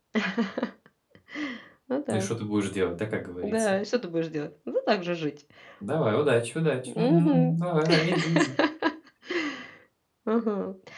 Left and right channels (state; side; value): identical; both; correlation 1.00